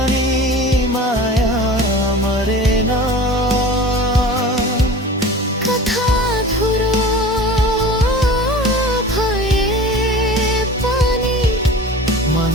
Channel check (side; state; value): both; normal; correlation 0.38